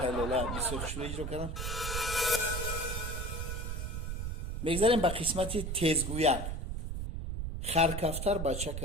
لولا بسیار خوشبو اجرا کردن. میگذاریم به قسمت تیزگویک. خرکفتر بچه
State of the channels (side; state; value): right; noise; rumble, 4 dB below the sound